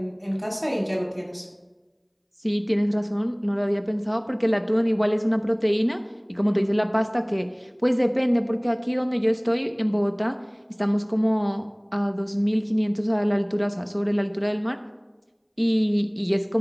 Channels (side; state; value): both; identical; correlation 1.00